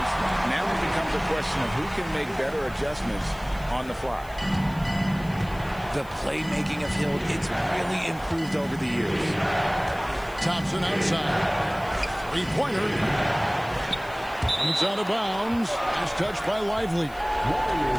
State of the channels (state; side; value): noise; left; hiss, 23 dB below the sound